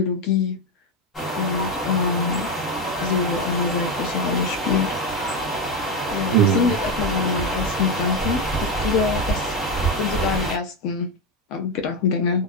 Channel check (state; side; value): normal; both; correlation 0.11